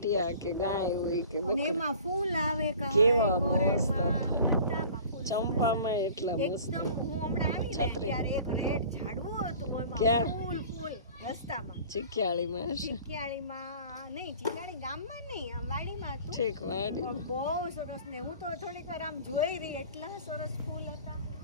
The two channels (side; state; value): both; inverted; correlation -0.45